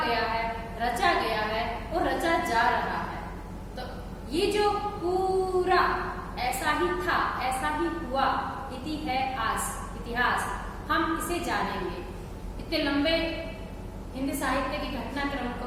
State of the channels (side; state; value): both; identical; correlation 1.00